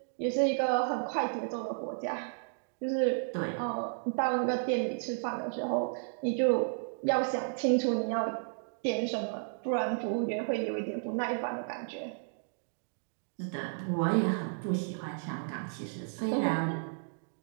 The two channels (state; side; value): silent; left; digital silence